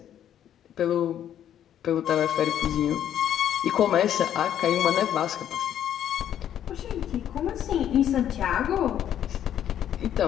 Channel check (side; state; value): right; quieter; 10.4 dB